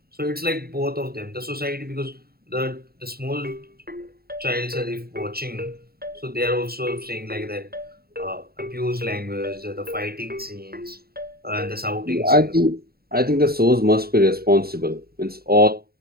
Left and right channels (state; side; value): late; left; 0.45 ms